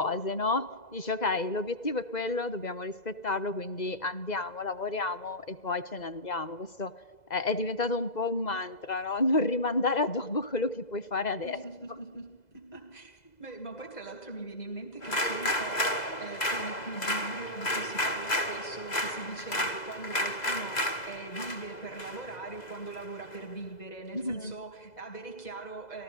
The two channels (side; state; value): right; late; 2.0 ms